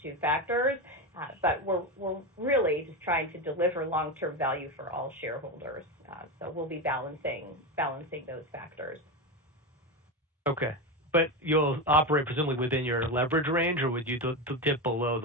two factors, but we're really just trying to deliver long-term value for all shareholders. So we'll be balancing those factors. Okay. But you'll operate presumably within your leverage range, or would you dip below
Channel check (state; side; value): normal; both; correlation 0.16